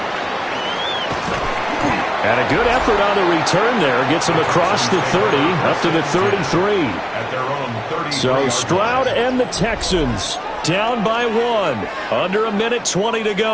Good effort on the return there. Gets him across the 30, up to the 33. So Stroud and the Texans down by 1. Under a minute 20 to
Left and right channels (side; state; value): both; identical; correlation 1.00